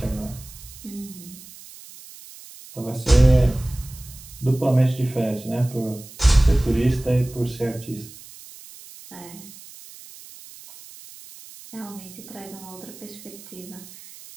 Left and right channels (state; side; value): noise; right; hiss, 18 dB below the sound